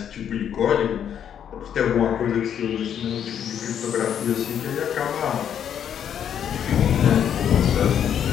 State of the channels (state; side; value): quieter; right; 9.0 dB